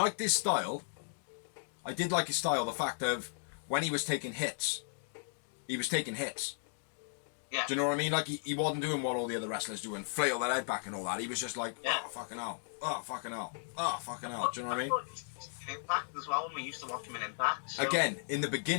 his style. I did like his style, the fact of when he was taking hits, he was taking hits. Yeah. Do you know what I mean? Like, he wasn't doing what all the other wrestlers do and flail their head back and all that. He was just like, oh, fucking hell. Oh, fucking hell. Oh, fucking hell. Do you know what I mean? Impact as well, when we used to watch him in Impact. So. Again, in the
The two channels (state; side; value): silent; right; digital silence